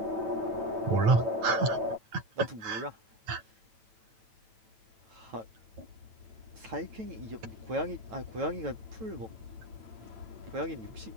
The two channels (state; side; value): late; left; 9.0 ms